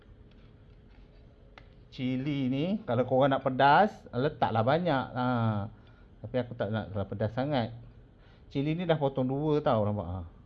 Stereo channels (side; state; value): both; identical; correlation 1.00